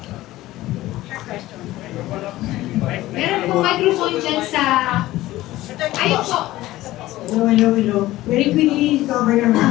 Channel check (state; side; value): quieter; right; 16.5 dB